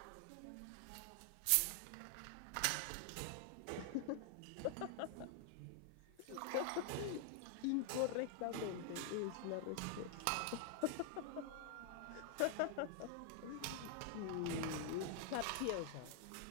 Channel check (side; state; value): both; different; correlation 0.00